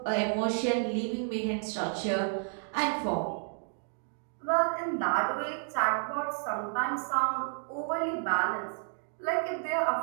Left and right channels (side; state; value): left; silent; 57 dB below the other